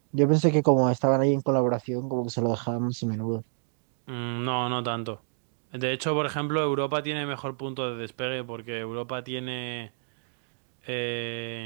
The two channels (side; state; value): left; silent; digital silence